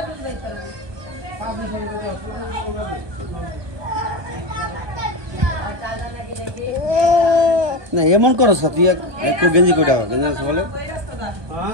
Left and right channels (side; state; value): left; late; 1.2 ms